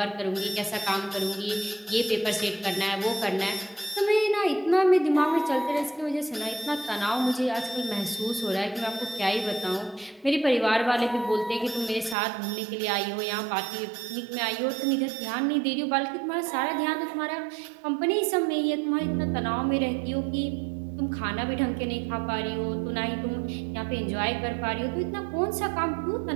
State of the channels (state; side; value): drops out; left; at 12.2 s